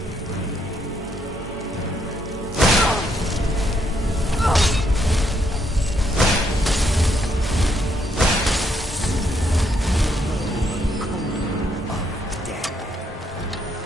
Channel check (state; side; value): normal; both; correlation 0.74